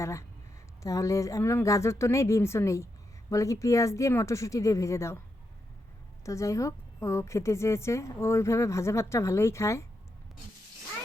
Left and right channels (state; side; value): normal; both; correlation 0.84